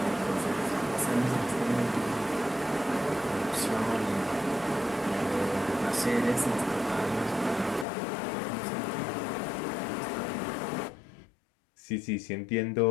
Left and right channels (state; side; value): drops out; right; at 7.9 s